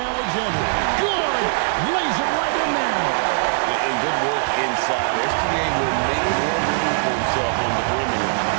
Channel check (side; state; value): left; silent; digital silence